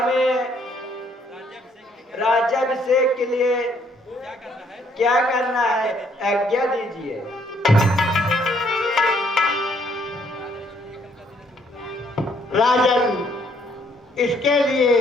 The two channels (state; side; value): normal; both; correlation 0.67